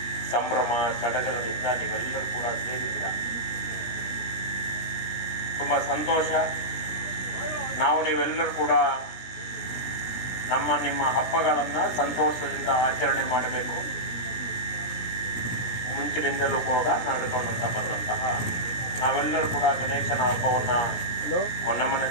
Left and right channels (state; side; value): late; right; 17 ms